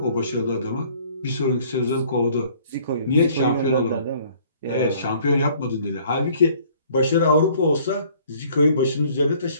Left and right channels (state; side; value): inverted; both; correlation -0.57